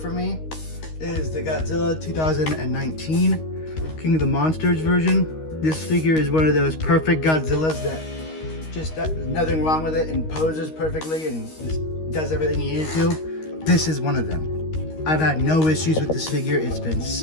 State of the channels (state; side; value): late; right; 13 ms